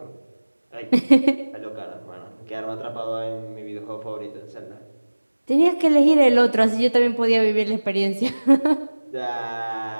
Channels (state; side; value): inverted; both; correlation -1.00